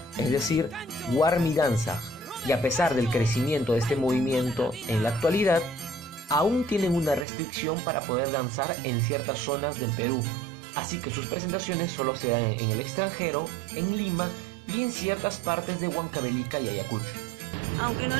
es decir, Warmi Danzaj, y a pesar del crecimiento de este movimiento en la actualidad, aún tienen una restricción para poder danzar en ciertas zonas del Perú, así que sus presentaciones solo se dan en el extranjero, en Lima y en ciertas partes de Huancavelica y Ayacucho. Aunque no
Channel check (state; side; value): drops out; left; at 7.2 s